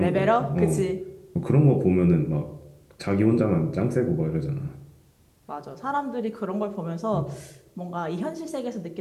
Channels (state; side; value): identical; both; correlation 1.00